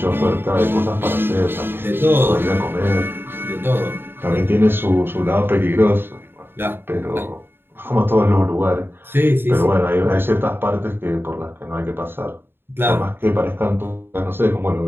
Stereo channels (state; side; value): late; left; 0.10 ms